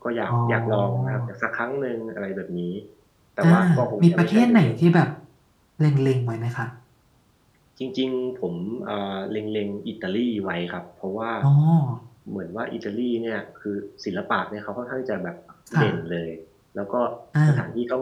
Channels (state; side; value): identical; both; correlation 1.00